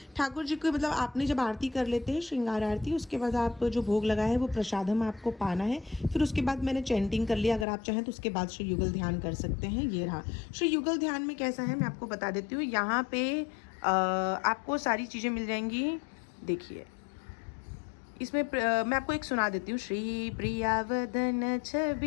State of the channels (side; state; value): right; drops out; at 7.7 s